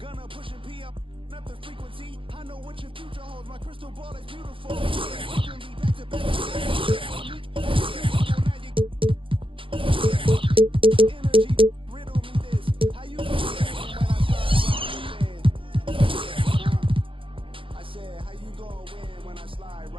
Gonna push and pee up the frequency. I know what your future holds. My crystal ball is beautiful. Back to back. Energy, riddle me this. How you doing when I slide right within? I said, how you gonna win when I slide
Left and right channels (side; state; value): left; late; 0.25 ms